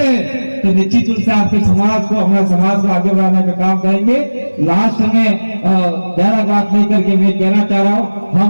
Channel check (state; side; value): inverted; both; correlation -1.00